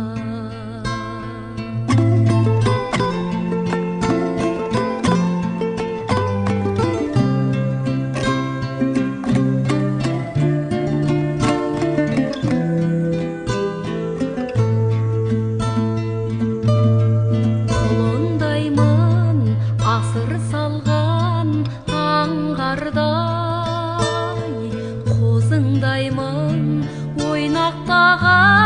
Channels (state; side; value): identical; both; correlation 1.00